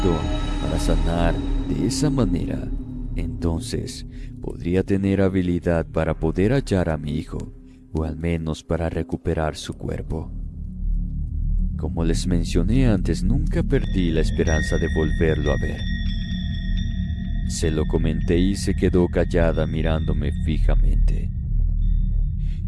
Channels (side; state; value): both; identical; correlation 1.00